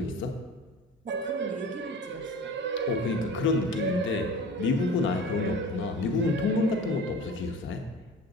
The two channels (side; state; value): both; normal; correlation 0.38